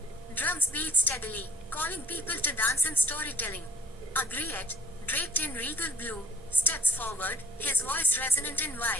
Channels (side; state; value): both; normal; correlation 0.50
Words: Drums beat steadily, calling people to dance and storytelling. A griot, draped in regal blue, steps forward, his voice resonant and